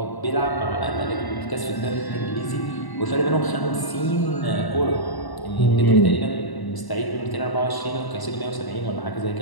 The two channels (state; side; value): late; right; 1.0 ms